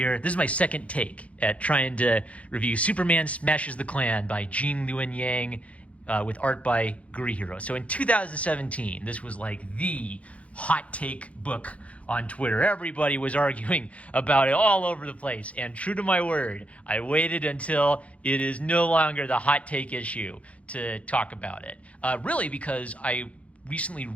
This is my second take at trying to review Superman Smashes the Klan by Gene Luen Yang with art by Gurihiro. So in 2017, this was like the hot take book on Twitter. Everybody was arguing about it all over the place. And true to my word, I waited until it is no longer the hot take issue to talk about it. Really because I recently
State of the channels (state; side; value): late; right; 0.064 ms